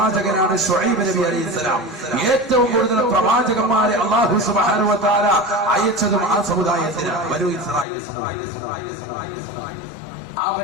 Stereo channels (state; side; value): drops out; right; at 7.9 s